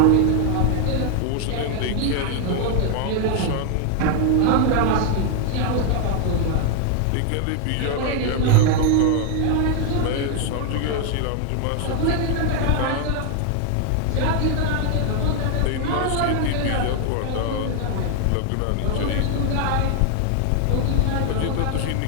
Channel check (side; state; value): both; different; correlation 0.00